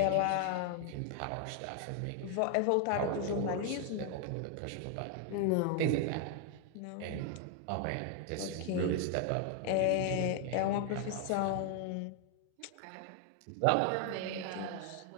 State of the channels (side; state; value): both; different; correlation 0.00